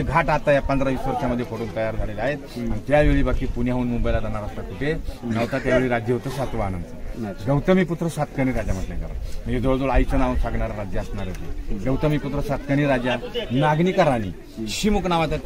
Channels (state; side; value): identical; both; correlation 1.00